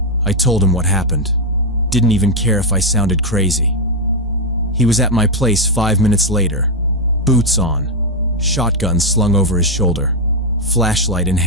I told him what happened. Didn't even care if I sounded crazy. He was at my place 5 minutes later, boots on, shotgun slung over his shoulder, flashlight in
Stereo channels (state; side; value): normal; both; correlation 0.02